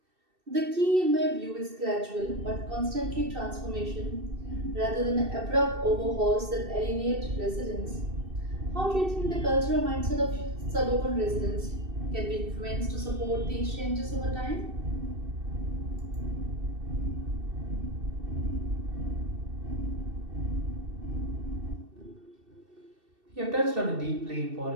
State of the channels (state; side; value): late; left; 2.7 ms